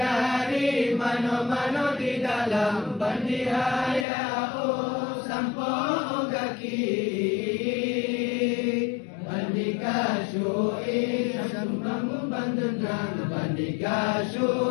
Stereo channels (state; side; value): drops out; right; at 4.0 s